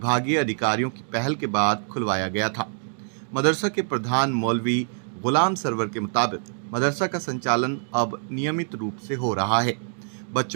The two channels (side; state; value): left; silent; 62 dB below the other